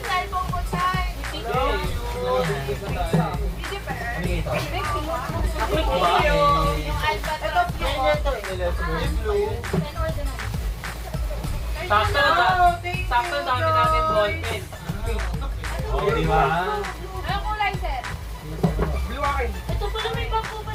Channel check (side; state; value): both; identical; correlation 1.00